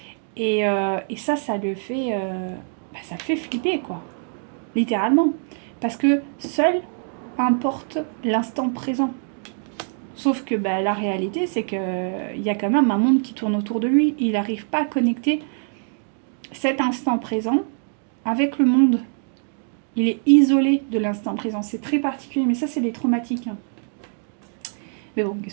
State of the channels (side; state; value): left; silent; 62 dB below the other